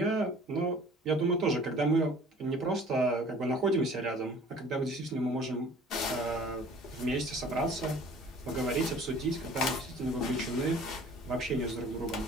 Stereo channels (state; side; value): normal; both; correlation 0.49